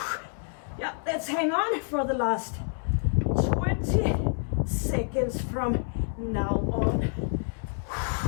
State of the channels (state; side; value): silent; right; 59 dB below the other